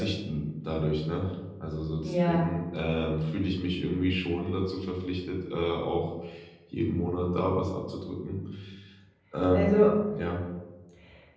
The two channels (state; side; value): identical; both; correlation 1.00